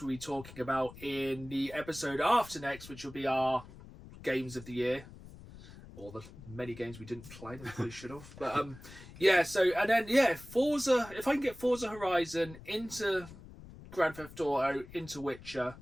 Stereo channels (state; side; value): noise; left; rumble, 17 dB below the sound